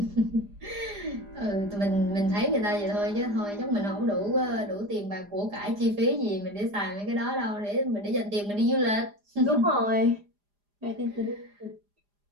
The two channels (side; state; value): left; late; 4.9 ms